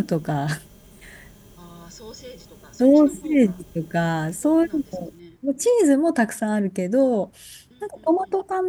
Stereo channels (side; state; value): both; identical; correlation 1.00